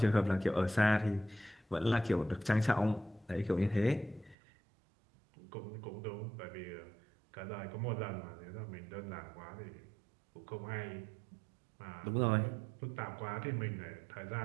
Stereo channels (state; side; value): drops out; left; at 4.4 s